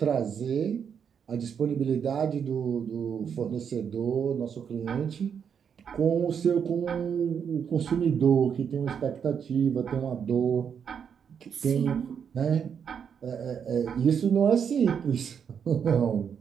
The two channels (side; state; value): left; quieter; 7.4 dB